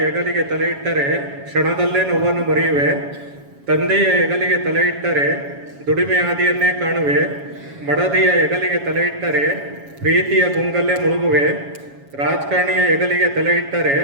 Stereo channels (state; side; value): late; left; 7.2 ms